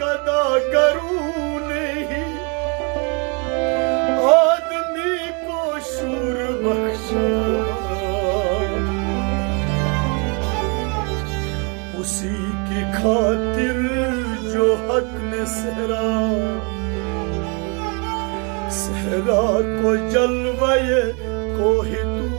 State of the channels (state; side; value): quieter; left; 34.3 dB